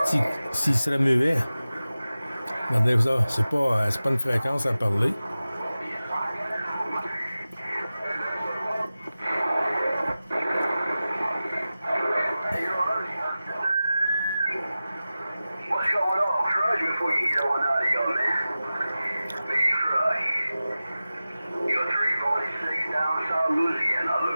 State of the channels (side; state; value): both; inverted; correlation -0.95